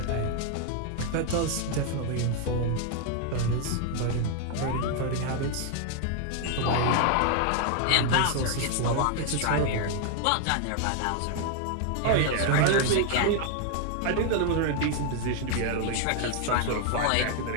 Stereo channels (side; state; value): both; different; correlation 0.00